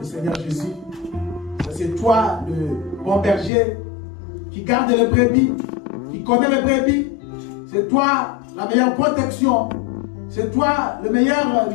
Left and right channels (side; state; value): right; drops out; at 3.5 s